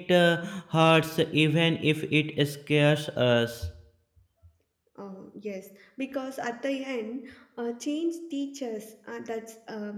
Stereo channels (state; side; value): identical; both; correlation 1.00